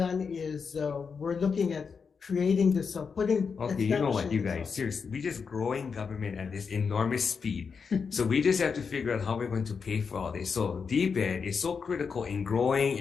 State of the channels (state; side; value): quieter; right; 5.7 dB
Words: is we're looking at creating this, putting. Okay, you know what, you guys, seriously, we're just growing government at this enormous speed. So we just have to figure out how we're going to pay for all this. So DBED is so critical in growing,